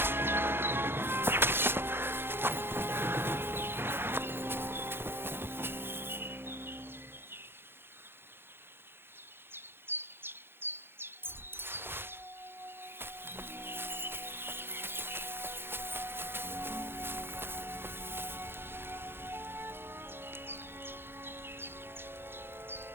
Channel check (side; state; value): left; late; 0.11 ms